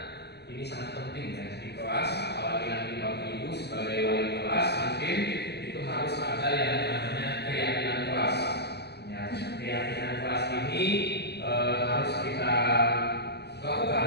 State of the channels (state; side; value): late; right; 0.49 ms